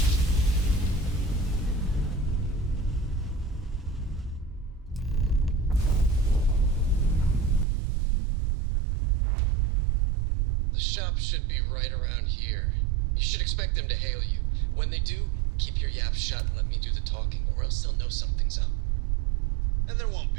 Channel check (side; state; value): left; drops out; at 7.7 s